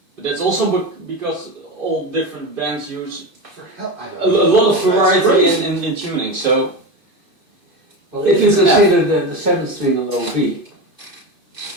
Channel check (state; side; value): late; left; 2.6 ms